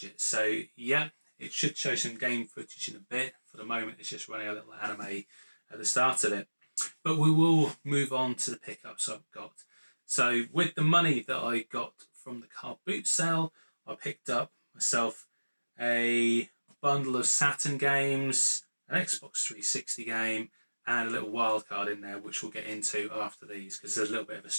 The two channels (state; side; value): inverted; both; correlation -1.00